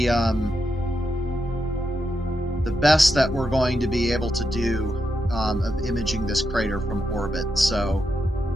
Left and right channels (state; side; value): normal; both; correlation 0.84